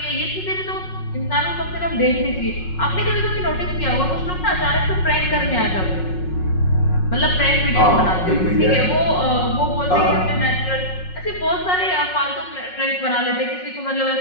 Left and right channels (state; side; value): late; right; 5.5 ms